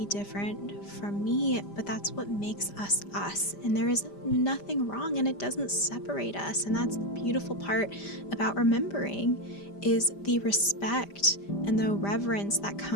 different from me, but that's what makes us us. And there is nothing wrong, and it doesn't separate us. And that's the beautiful part about remembering, is the respect and the reverence that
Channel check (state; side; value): late; right; 5.0 ms